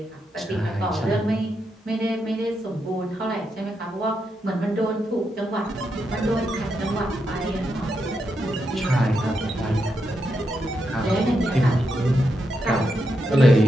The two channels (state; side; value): normal; both; correlation 0.83